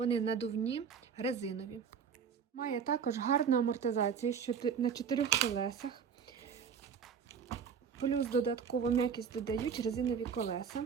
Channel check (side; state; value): left; quieter; 6.9 dB